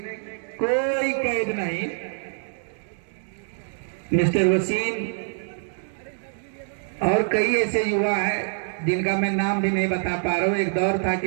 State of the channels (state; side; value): silent; left; digital silence